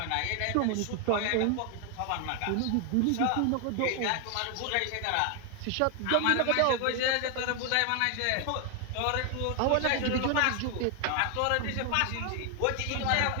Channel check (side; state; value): both; different; correlation 0.00